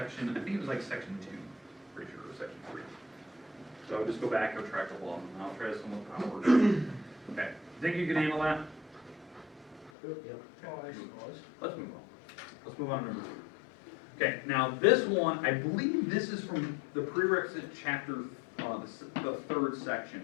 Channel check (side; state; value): right; drops out; at 9.9 s